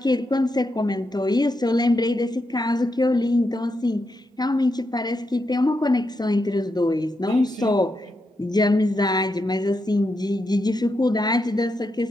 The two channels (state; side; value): normal; both; correlation 0.84